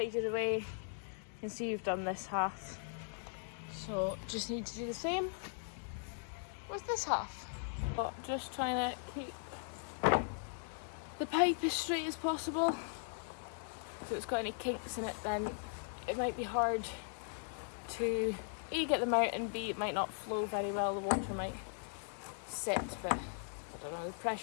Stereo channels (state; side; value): silent; right; digital silence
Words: away. You can see you've done this half, so just need to do the same with this half. But just trying to keep the pipe as straight as possible. If it's got any kinks in it, then it might be hard to A, get them out, and B, it might not flow very well. The water might sit, but I don't know, the